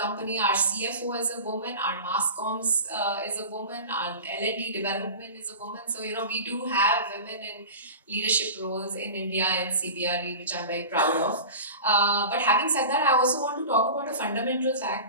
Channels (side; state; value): both; inverted; correlation -0.33